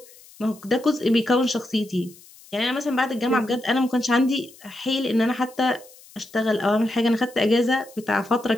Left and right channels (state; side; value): noise; left; hiss, 23 dB below the sound